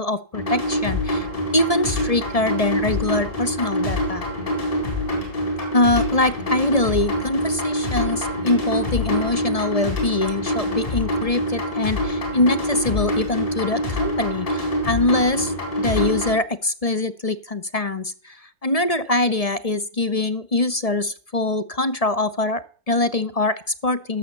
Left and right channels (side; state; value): right; late; 1.7 ms